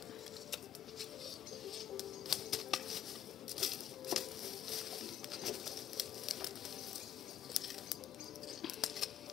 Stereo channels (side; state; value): right; quieter; 10.3 dB